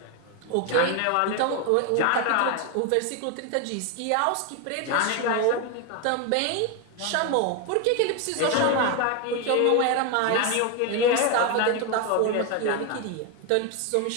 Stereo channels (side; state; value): both; different; correlation 0.01